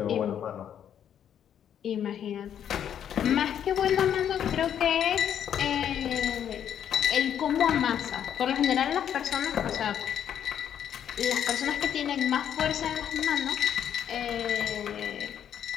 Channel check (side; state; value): right; quieter; 9.4 dB